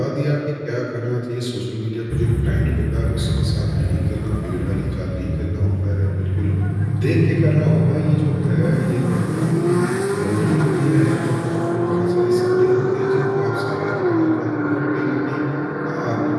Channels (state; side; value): identical; both; correlation 1.00